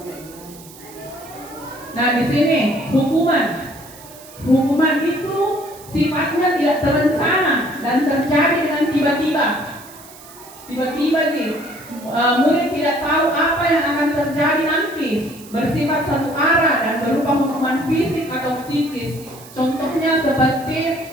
Nah, di sini hukuman itu sifatnya tidak terencana dan terjadi dengan tiba-tiba. Tiba-tiba nih, murid tidak tahu apa yang akan terjadi nanti, bersifat satu arah dan berupa hukuman fisik atau psikis. Contohnya seperti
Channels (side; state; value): right; noise; hiss, 20 dB below the sound